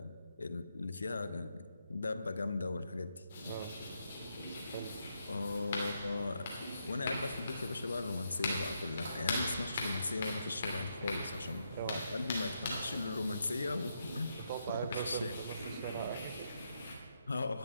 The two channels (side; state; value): both; inverted; correlation -0.80